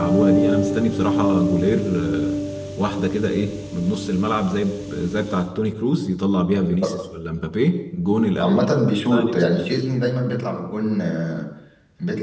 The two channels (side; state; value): both; identical; correlation 1.00